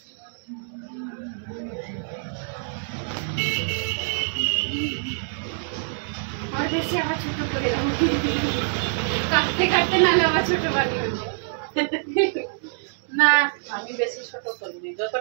আর বেশি আবার ছোট করে দাও, কাটতে কাটতে নালে আবার ছোট বানিয়ে হবে। না আমি বেশি ছোট করিনি,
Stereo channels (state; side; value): silent; left; digital silence